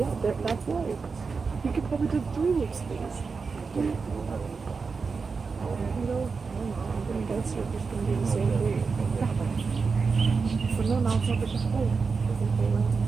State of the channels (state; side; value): quieter; left; 4.9 dB